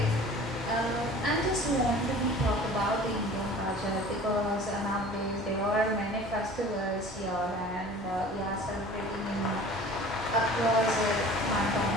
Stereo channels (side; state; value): both; normal; correlation 0.44